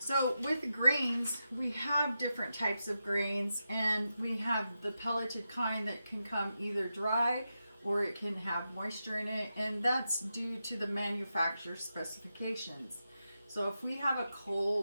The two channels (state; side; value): inverted; both; correlation -0.89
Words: with grains, we have different types of grains, and we have the pelleted kind that can come either dry or it can have moisture in it, and that's due to the manufacturer's specifications. So if we have a